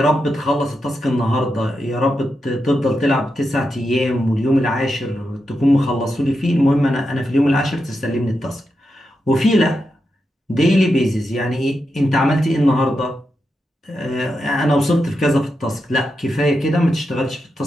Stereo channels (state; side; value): normal; both; correlation 0.87